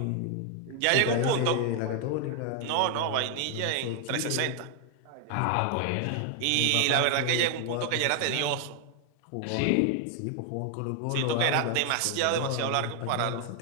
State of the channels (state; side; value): different; both; correlation 0.00